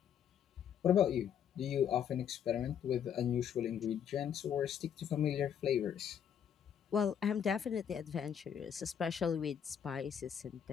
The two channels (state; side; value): quieter; right; 8.5 dB